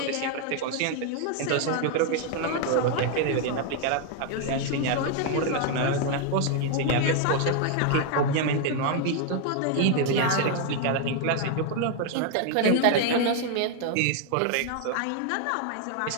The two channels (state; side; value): different; both; correlation 0.00